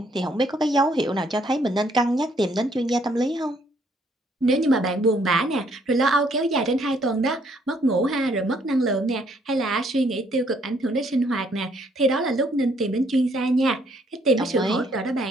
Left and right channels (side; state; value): both; normal; correlation 0.67